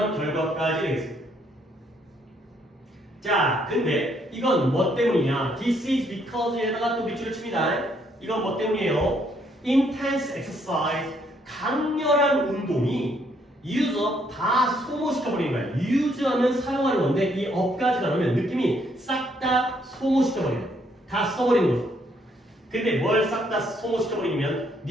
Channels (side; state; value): both; normal; correlation 0.70